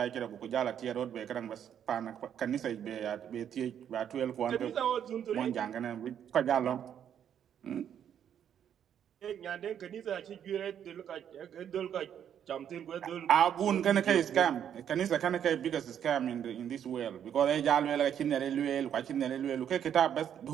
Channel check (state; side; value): quieter; left; 9.2 dB